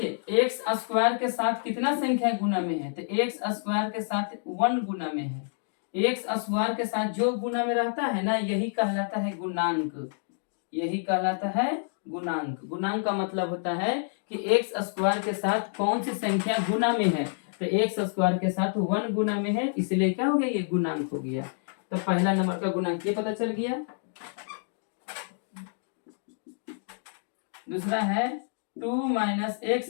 x² के साथ कितना संख्या गुना में है, तो x² के साथ 1 गुना में है। x² के साथ जो गुना में रहता है ना, यही कहलाता है गुणांक, यही कहलाता है गुणांक। गुणांक का मतलब होता है कि x² के साथ कौन सी संख्या गुना में है, तो x² के साथ 1 गुना में है, इसलिए क्या हो गया, ये गुणांक हो गया। तो पहला नंबर का गुणांक ये पता चल गया। दूसरा है 2 -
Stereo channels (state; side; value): silent; right; digital silence